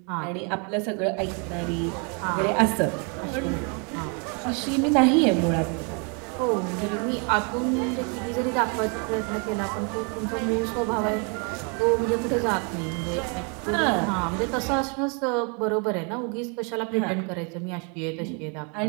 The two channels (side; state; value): left; quieter; 35.9 dB